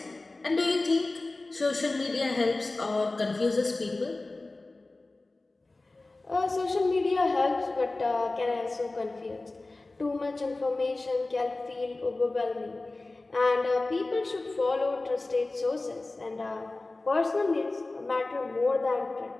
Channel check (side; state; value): right; quieter; 3.1 dB